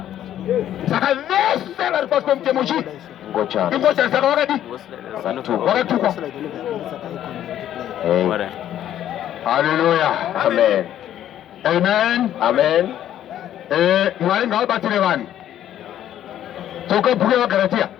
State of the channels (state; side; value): quieter; right; 11.4 dB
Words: Saka vese vari pasi pemutemo chii? Ngochani. Ngochani saka wakadi? Wakatukwa. Hallelujah. Amen. Amen. Amen. Mwari ngavabatire vanhu. Toka bhuku yevaGaratia.